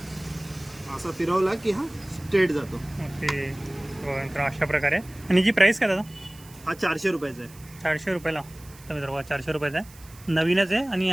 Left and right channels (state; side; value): noise; right; hiss, 22 dB below the sound